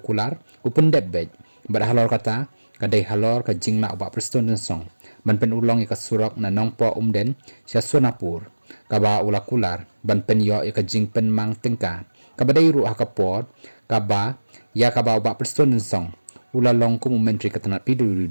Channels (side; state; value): both; inverted; correlation -1.00